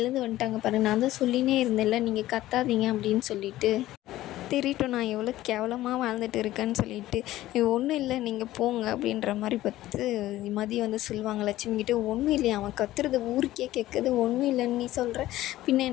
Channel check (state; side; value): quieter; right; 15.3 dB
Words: வந்துட்டாங்க பாரு, நான் தான் சொல்லினே இருந்தேன்ல நீங்கள் கத்தாதீங்க அப்படின்னு சொல்லிட்டு, தெரியட்டும் நான் எவ்வளோ கேவலமாக வாழ்ந்துட்டு இருக்கேன்னு சொல்லிட்டு, ஒன்றும் இல்லை நீங்கள் போங்க அப்படின்ற மாதிரி பார்த்து மதி வந்து சொல்லுவாங்க லட்சுமிக்கிட்ட. ஒன்றும் இல்லையா, அவன் கத்துறது ஊருக்கே கேட்குது, ஒன்றும் இல்லைன்னு நீ சொல்கிற, பின்ன